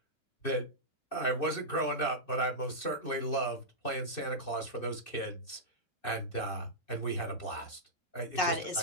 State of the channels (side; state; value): right; late; 2.6 ms